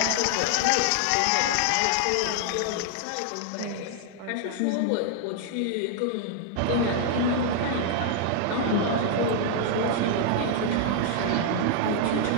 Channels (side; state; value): both; different; correlation 0.00